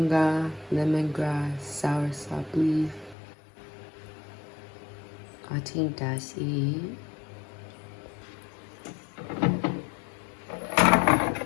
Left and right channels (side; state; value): right; drops out; at 3.2 s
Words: lemongrass, soursop leaf. I think that's it.